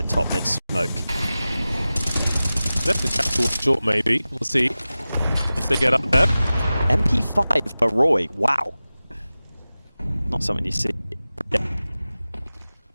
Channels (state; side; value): inverted; both; correlation -0.96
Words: top mid smoke. Left the chat towards short maybe. We'll see. Once they get up there. MP5 for Roy. Wow. Not something you see. Yeah.